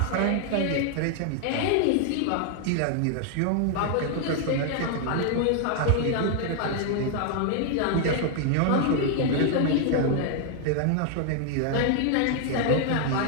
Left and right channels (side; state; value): both; different; correlation 0.00